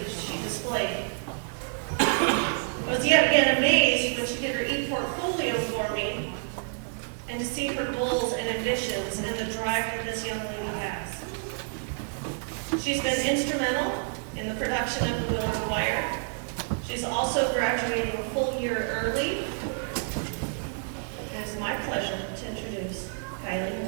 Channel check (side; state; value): left; silent; 59 dB below the other